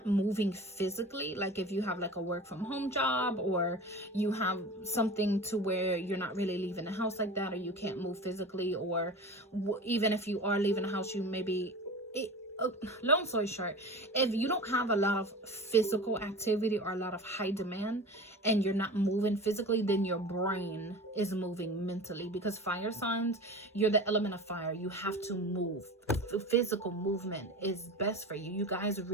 moving physically, like if you have like a work from home job, or you have something to where you're not really leaving the house like that, or you can't move physically, or even if you are leaving the house, you maybe long story short, if you don't have a lot of physical activity or a lot of high demand, and you're not moving physically, then your brain is moving mentally, because fire signs, you're the element of fire. You have to move. Physical movement is best for you. You guys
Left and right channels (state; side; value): normal; both; correlation 0.34